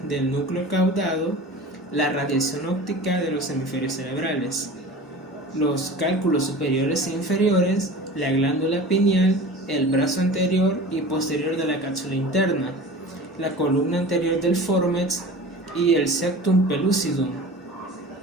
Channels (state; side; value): normal; both; correlation 0.37